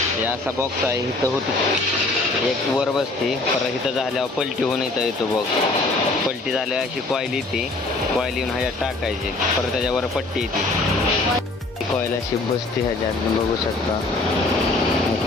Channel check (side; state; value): right; quieter; 3.1 dB